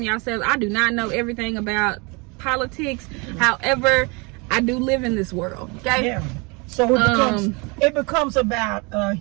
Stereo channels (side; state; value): left; quieter; 29.4 dB